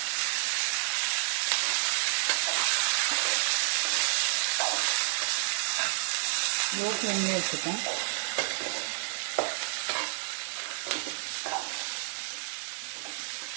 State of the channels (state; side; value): silent; left; digital silence